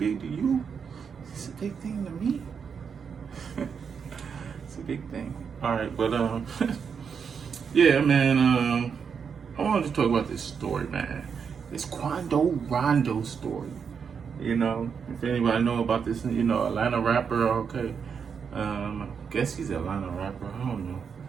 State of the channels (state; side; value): quieter; left; 6.5 dB